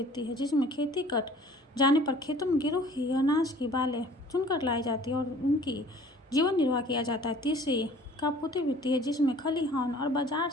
है, जिसमें खेती कट जाने पर खेतों में गिरी हुई अनाज की बालें चुनकर लाई जाती है और उनकी जीवन निर्वाह किया जाता है। तीसरी कापूती वृत्ति है, जिसमें खलिहान और बाजार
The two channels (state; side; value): normal; both; correlation 0.50